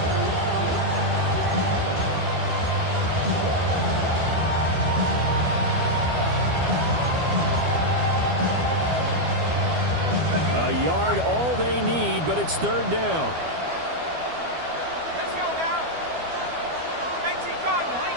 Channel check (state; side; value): late; left; 12 ms